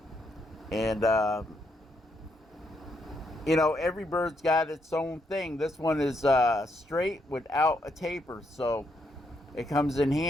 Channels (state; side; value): normal; both; correlation 0.77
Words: And You know, every bird's got its own thing. This one is straight without a taper, so it comes in